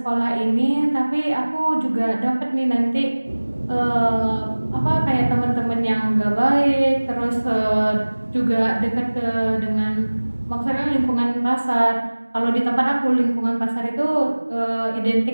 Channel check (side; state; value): both; inverted; correlation -1.00